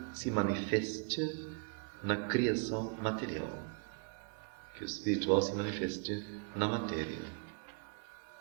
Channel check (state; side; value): quieter; left; 38.6 dB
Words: se manifeste na criação material, que o espiritual se manifeste na matéria.